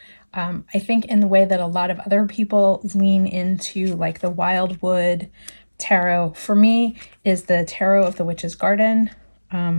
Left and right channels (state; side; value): inverted; both; correlation -1.00